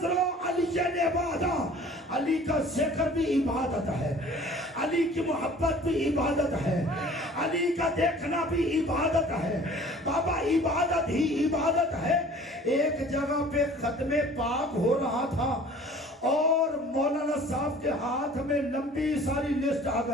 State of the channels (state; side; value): normal; both; correlation 0.48